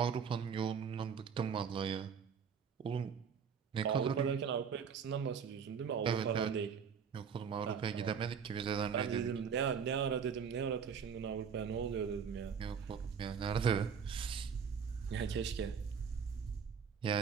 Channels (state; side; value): quieter; left; 6.7 dB